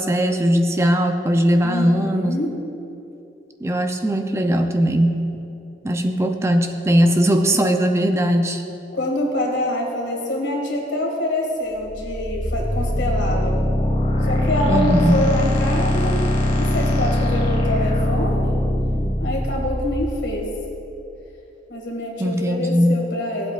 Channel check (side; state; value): both; normal; correlation 0.75